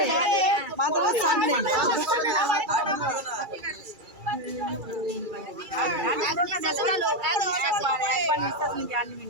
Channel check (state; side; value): late; left; 2.3 ms